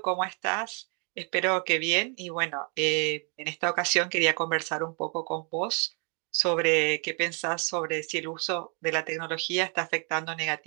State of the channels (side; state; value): left; quieter; 37.3 dB